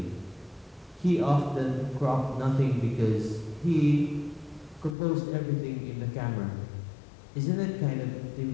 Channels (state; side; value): drops out; right; at 5.0 s